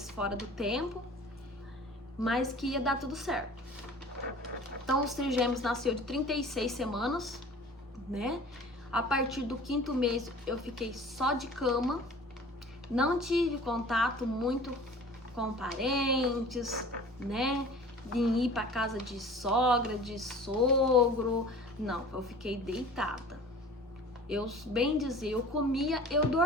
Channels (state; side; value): normal; both; correlation 0.43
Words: fora do tempo, mas que ia dar tudo certo. Então os trigêmeos nasceu de 36 semanas, né? A partir do 5º mês eu fiquei só de cama, não tive contato muito com parentes, né? De ir para casa de sogra, de sogro, não, eu fiquei deitada. Eu, bem dizer, eu comia, eu